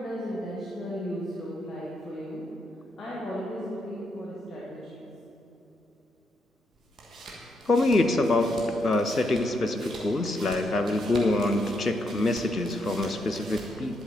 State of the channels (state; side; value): normal; both; correlation 0.78